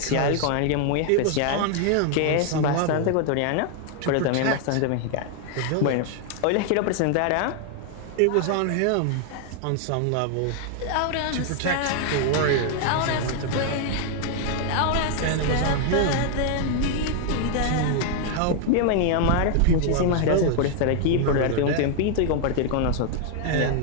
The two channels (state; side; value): different; both; correlation 0.00